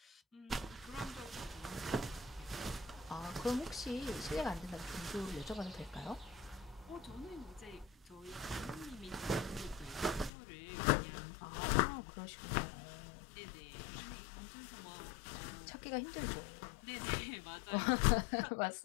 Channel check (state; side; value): drops out; right; at 10.3 s